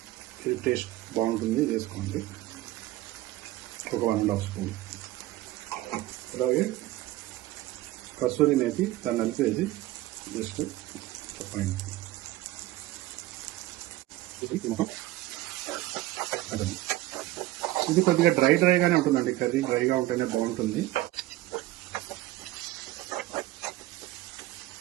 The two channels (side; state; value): left; quieter; 16.9 dB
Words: ఇది టేస్ట్ బాగుంటుంది, వేసుకోండి. ఒక 1.5 స్పూన్. అలాగే కసూరి మేతి, దాన్ని నలిపేది జస్ట్ పైన. ఇది కొద్దిగా డ్రైగానే ఉంటుందండి. కర్రీ డ్రైగా ఉంటేనే బాగుంటుంది.